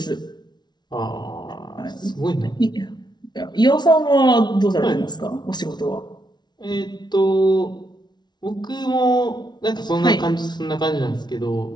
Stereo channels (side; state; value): right; late; 0.20 ms